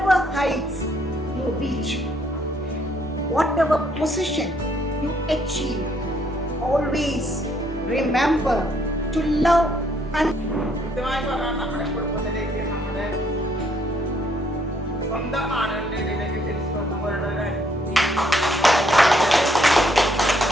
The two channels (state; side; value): normal; both; correlation 0.69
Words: heights you reach, whatever position you achieve, always remember to love and കൃത്യമായി പറഞ്ഞാൽ നമ്മുടെ കുടുംബത്തിലേക്ക് നമ്മുടെ സ്വന്തം ആളുകളുടെ ഇടയിലേക്ക് തിരിച്ചു കൊണ്ടുപോകേണ്ട ഒരു കാര്യം.